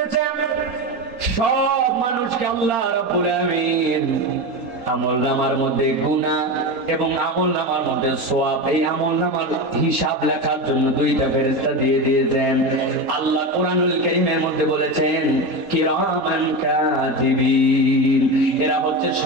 সব মানুষকে আল্লাহ রাব্বুল আলামিন আমলনামার মধ্যে গুনাহ এবং আমলনামার মধ্যে সওয়াব, এই আমলনামার হিসাব লেখার জন্য দুইটা ফেরেশতা দিয়ে দিয়েছেন। আল্লাহ কোরআনুল কারীমের মধ্যে বলেছেন কিরামান কাতিবিন, এরা হচ্ছে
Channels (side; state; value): left; late; 3.8 ms